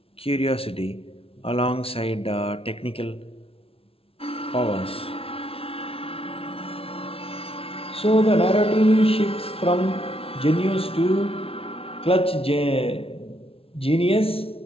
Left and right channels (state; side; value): late; right; 0.27 ms